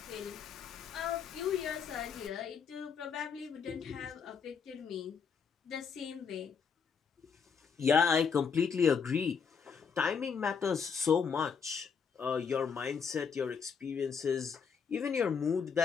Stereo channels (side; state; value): right; quieter; 6.2 dB